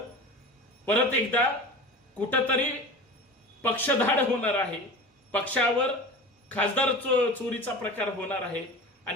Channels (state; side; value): normal; both; correlation 0.34